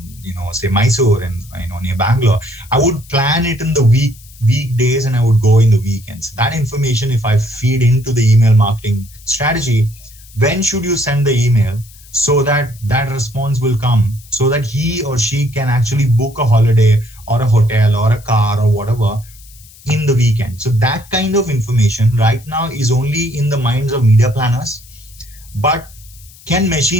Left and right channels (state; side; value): noise; left; hiss, 23 dB below the sound